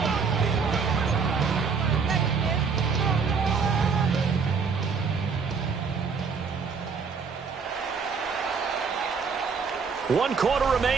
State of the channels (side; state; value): left; quieter; 5.5 dB